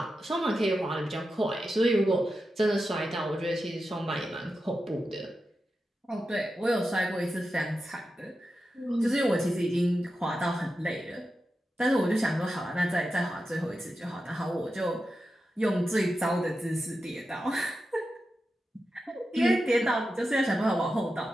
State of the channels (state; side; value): normal; both; correlation 0.90